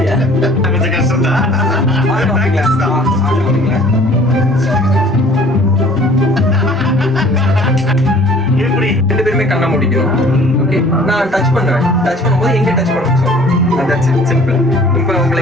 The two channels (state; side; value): normal; both; correlation 0.52